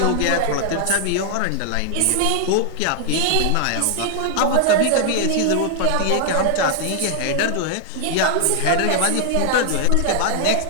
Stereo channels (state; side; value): different; both; correlation 0.00